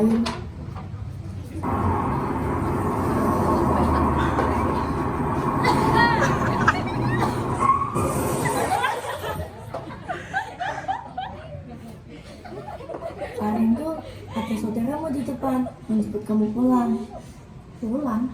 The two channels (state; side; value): identical; both; correlation 1.00